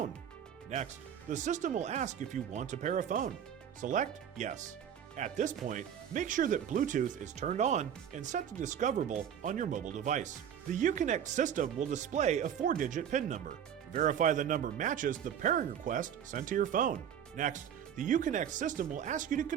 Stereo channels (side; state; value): left; quieter; 9.0 dB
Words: Next, the system will ask if you want to pair a phone. Select Yes. At this point, make sure that Bluetooth is turned on and set to Discoverable on your mobile device. The Uconnect system will display a 4-digit PIN number. Verify the number matches the pairing request sent to your phone. Next, the Uconnect system will ask you to